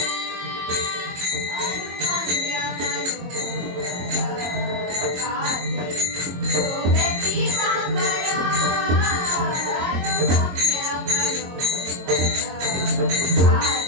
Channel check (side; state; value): left; late; 22 ms